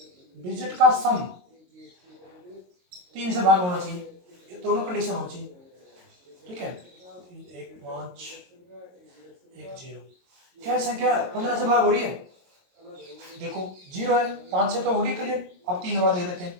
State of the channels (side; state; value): left; late; 22 ms